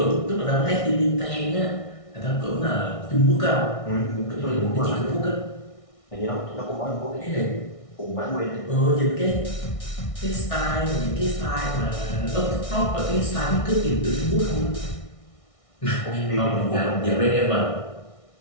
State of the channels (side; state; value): right; late; 1.6 ms